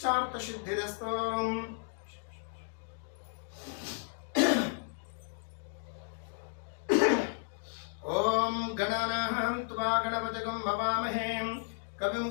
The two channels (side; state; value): right; silent; digital silence